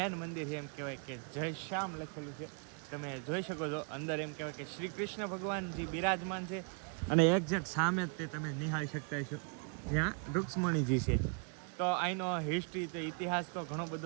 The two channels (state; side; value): quieter; left; 38.3 dB